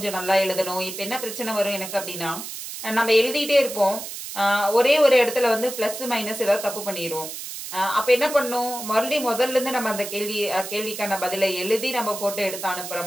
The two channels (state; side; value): noise; right; hiss, 9 dB below the sound